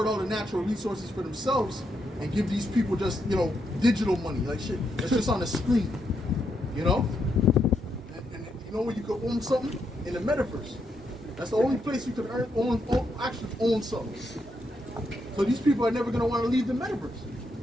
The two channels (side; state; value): both; normal; correlation 0.80